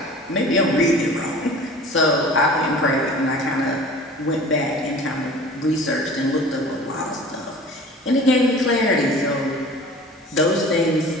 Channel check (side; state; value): both; normal; correlation 0.42